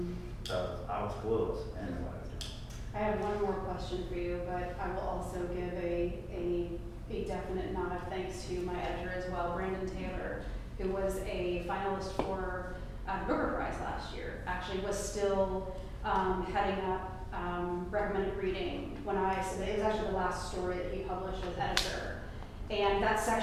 So I was clueless in what I was doing. I have one more question for you, but I will also give a definite nod of thanks to my editor as well, Brandon Taylor, who was a finalist for the Booker Prize last year. Actually was still heading up recommended reading when I submitted. It was actually the last story that he published as editor. And that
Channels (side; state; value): both; identical; correlation 1.00